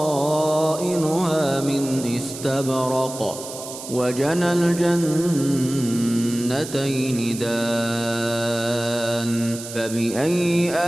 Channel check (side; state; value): right; noise; hiss, 11 dB below the sound